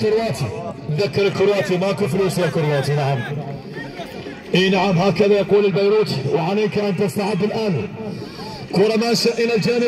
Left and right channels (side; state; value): both; identical; correlation 1.00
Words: ذكر الكرواتي ماكو فلوس يا كرواتي. نعم اي نعم هكذا يقول البيروتي. وعليك ان تستعد الان. كرة ماشية الى